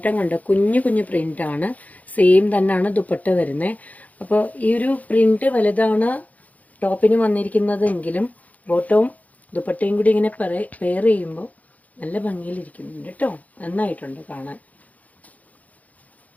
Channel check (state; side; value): late; right; 0.074 ms